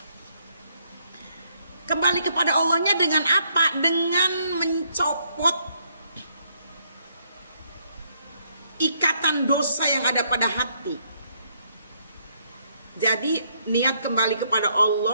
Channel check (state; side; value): inverted; both; correlation -0.71